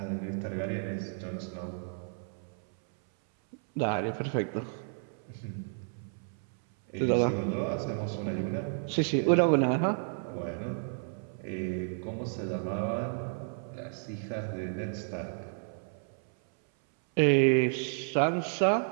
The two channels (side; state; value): left; silent; 57 dB below the other